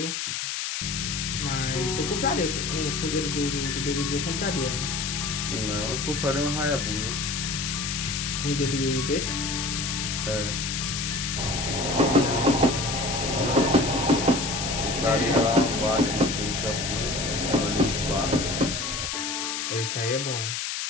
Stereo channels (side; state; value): left; noise; hiss, 2 dB below the sound